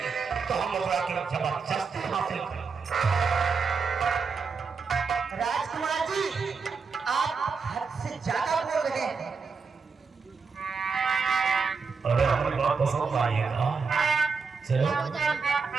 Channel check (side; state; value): left; quieter; 5.1 dB